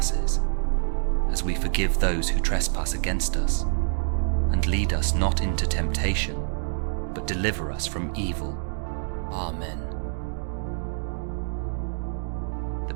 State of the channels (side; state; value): left; silent; digital silence